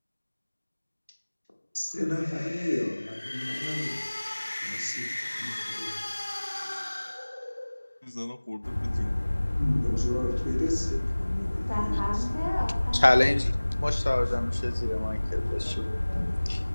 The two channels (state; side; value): inverted; both; correlation -1.00